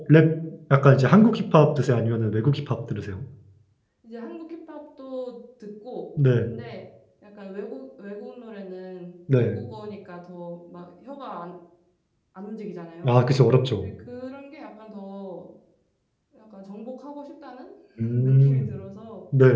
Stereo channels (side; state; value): both; identical; correlation 1.00